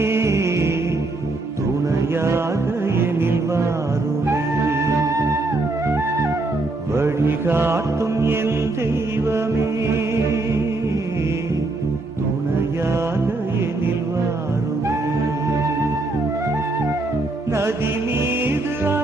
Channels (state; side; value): quieter; left; 3.0 dB